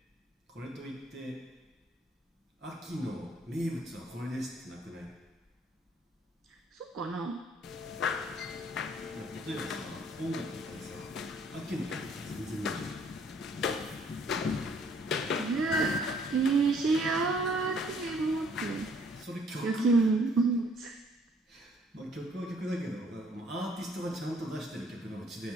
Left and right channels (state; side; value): normal; both; correlation 0.62